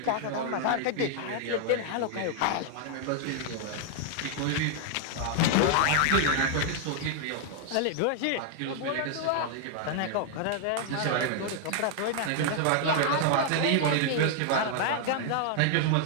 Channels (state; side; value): different; both; correlation 0.00